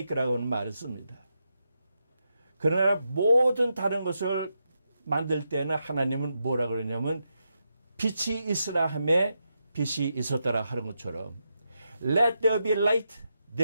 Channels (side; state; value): both; inverted; correlation -0.85